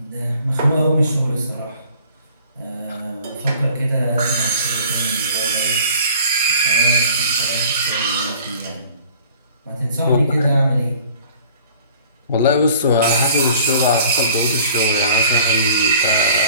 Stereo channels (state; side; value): inverted; both; correlation -0.51